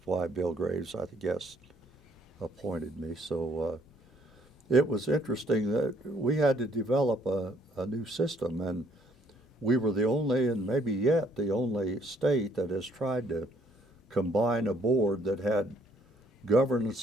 why Bill Graves, I guess, appointed me. So it was interesting that we had to develop a new system, and we were the only, and maybe yet the only state that has tried to combine a board that had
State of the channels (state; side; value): normal; both; correlation 0.64